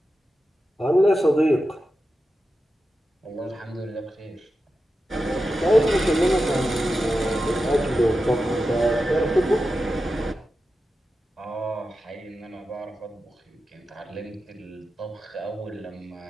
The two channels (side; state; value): both; normal; correlation 0.91